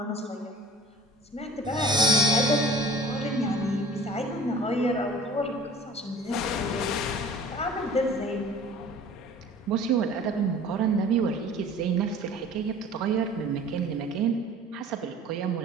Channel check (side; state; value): both; normal; correlation 0.45